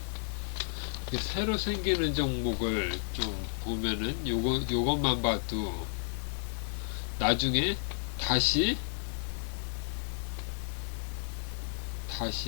새로 생기는 종목을 좀 보면은 요것만 봐도 나중에 다시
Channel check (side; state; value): right; silent; digital silence